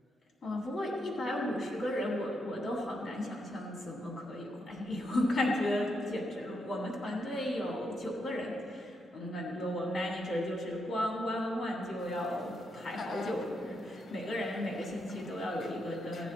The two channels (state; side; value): normal; both; correlation 0.80